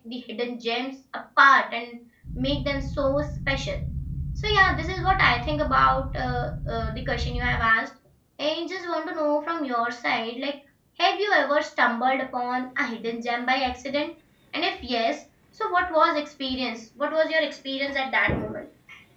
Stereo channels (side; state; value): both; identical; correlation 1.00